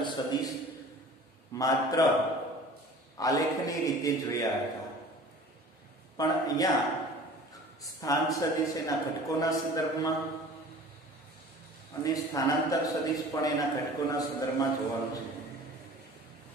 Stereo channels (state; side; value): normal; both; correlation 0.44